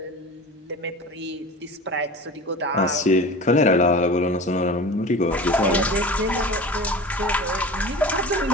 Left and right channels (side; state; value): both; normal; correlation 0.35